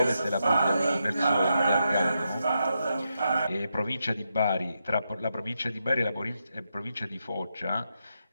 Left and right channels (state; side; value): inverted; both; correlation -0.84